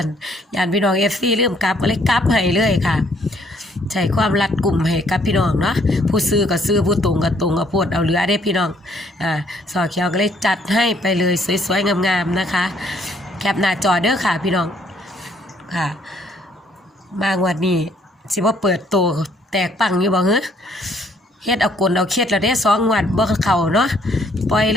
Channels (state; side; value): normal; both; correlation 0.66